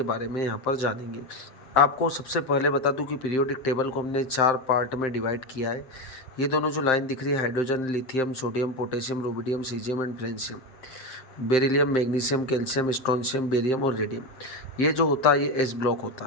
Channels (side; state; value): right; late; 7.7 ms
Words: बारे में यहाँ पर जानेंगे। आपको सबसे पहले बता दूं कि पीरियोडिक टेबल को हमने 4 पार्ट में डिवाइड किया है। ये दोनों जो लाइन दिख रही है, hydrogen, lithium, sodium, potassium, rubidium, caesium and francium, beryllium, magnesium, calcium, strontium, barium और रेडियम, ये जो होता है ये एस ब्लॉक